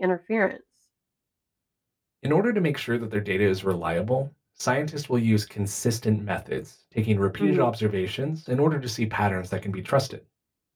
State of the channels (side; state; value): both; identical; correlation 1.00